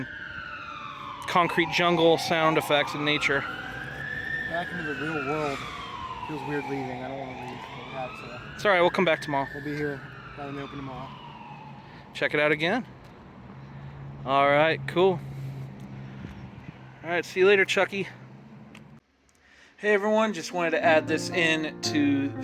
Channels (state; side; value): identical; both; correlation 1.00